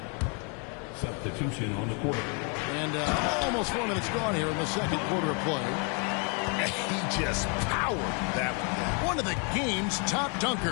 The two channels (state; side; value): quieter; right; 36.4 dB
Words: Substitution on the court. And almost 4 minutes gone here in the second quarter of play. He just powered that one. One of the game's top